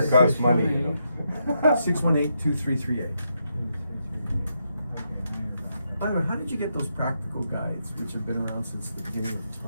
costs money, you know. 618-2338. Okay, By the way, how did you get those practical guides, which have been around since the beginning of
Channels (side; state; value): both; inverted; correlation -0.81